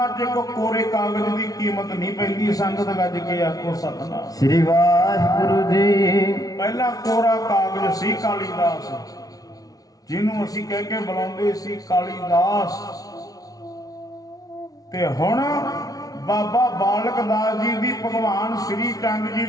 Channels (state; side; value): late; right; 0.18 ms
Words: ਚਿਰ ਕੋਰੇ ਕਾਗਜ਼ ਦੀ ਕੀਮਤ ਨਹੀਂ ਪੈਂਦੀ। ਸੰਗਤ ਗੱਜ ਕੇ ਆਖੋ ਸਤਿਨਾਮ ਸ੍ਰੀ ਵਾਹਿਗੁਰੂ ਜੀ। ਪਹਿਲਾਂ ਕੋਰਾ ਕਾਗਜ਼ ਸੀ ਕਾਲੀਦਾਸ, ਜਿਹਨੂੰ ਅਸੀਂ ਕਹਿ ਕੇ ਬੁਲਾਉਂਦੇ ਸੀ ਕਾਲੀਦਾਸ, ਤੇ ਹੁਣ ਬਾਬਾ ਬਾਲਕ ਦਾਸ ਜੀ ਦੀ, ਭਗਵਾਨ ਸ੍ਰੀ ਚੰਦ ਜੀ